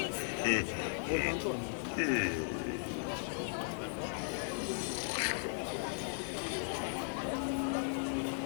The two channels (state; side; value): silent; right; digital silence